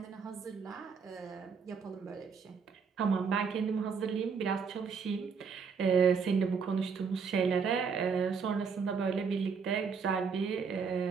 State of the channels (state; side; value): quieter; left; 5.8 dB